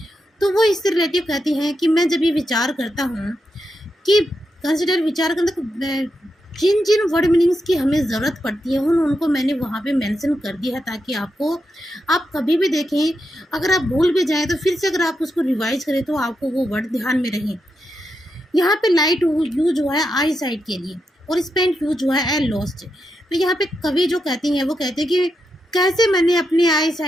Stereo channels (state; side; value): normal; both; correlation 0.85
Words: तो वो इससे रिलेटिव कहती हैं कि मैं जब ये विचार करता हूँ कि कंसिडर विचार करना, जिन जिन वर्ड मीनिंग्स की हमें ज़रूरत पड़ती है उनको मैंने वहाँ पे मेंशन कर दिया है, ताकि आप कभी भी देखें, अगर आप भूल भी जाएं तो फिर से अगर आप उसको रिवाइज करें तो आपको वो वर्ड ध्यान में रहें। यहाँ पे लाइट यूज हुआ है आई साइड के लिए और स्पेंट यूज हुआ है लॉस्ट। तो यहाँ पे कवि जो कहते हैं वो कहते हैं कि कैसे मैंने अपने आई